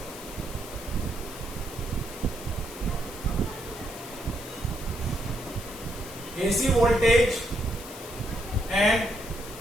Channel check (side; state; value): left; noise; hiss, 13 dB below the sound